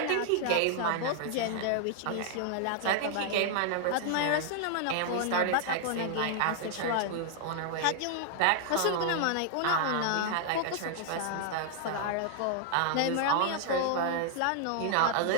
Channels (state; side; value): different; both; correlation 0.00